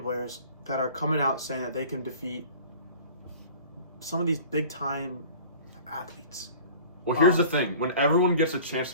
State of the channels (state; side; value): inverted; both; correlation -0.44